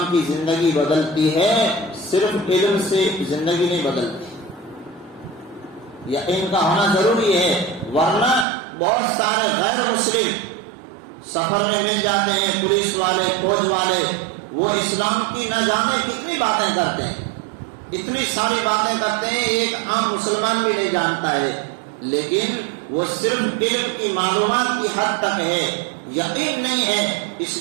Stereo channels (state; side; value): drops out; left; at 8.5 s